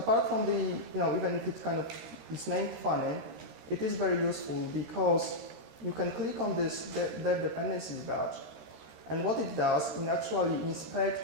from the, even if it kind of is named funny, it is very useful because you can click on this dev dependencies badge, and what it does, it actually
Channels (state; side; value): late; left; 13 ms